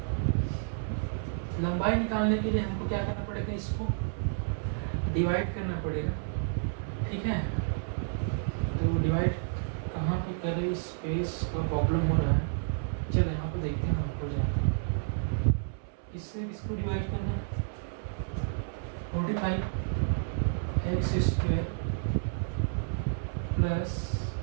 लंबाई निकालने के लिए हमको क्या करना पड़ेगा, इसको डिवाइड करना पड़ेगा। ठीक है, तो डिवाइड कहाँ पे करें, स्पेस का प्रॉब्लम हो रहा है। चलो यहाँ पे देखते हैं, हम हो जाएगा। इससे इसको डिवाइड करना है, 45x² प्लस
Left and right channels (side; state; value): left; silent; 57 dB below the other